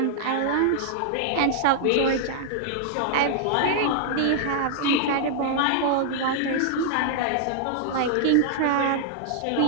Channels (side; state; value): both; different; correlation -0.01